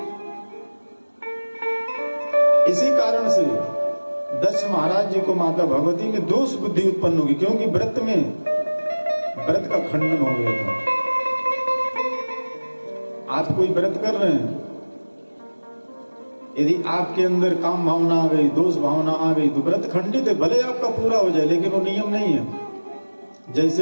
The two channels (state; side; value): inverted; both; correlation -1.00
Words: इसी कारण से दक्ष महाराज जी को माता भगवती में दोष बुद्धि उत्पन्न होगी, क्योंकि व्रत में व्रत का खंडन हो गया था। आप कोई व्रत कर रहे हैं, यदि आपके अंदर काम भावना आ गई, दोष भावना आ गई, तो व्रत खंडित है। भले आपका पूरा हो जाए, लेकिन वो नियम नहीं है।